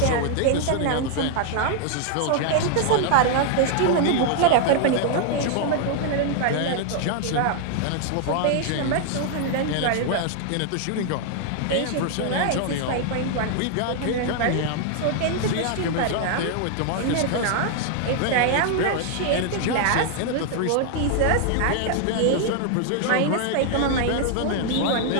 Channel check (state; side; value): different; both; correlation 0.00